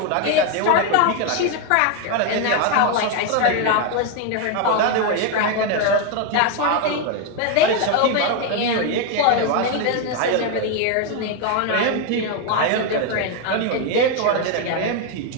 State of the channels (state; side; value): different; both; correlation 0.01